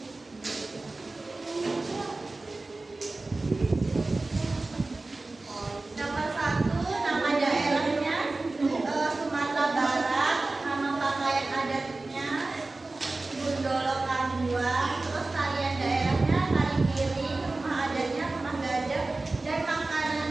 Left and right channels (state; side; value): quieter; left; 3.2 dB